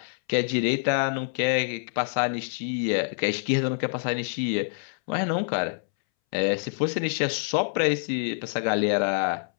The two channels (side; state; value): right; silent; 61 dB below the other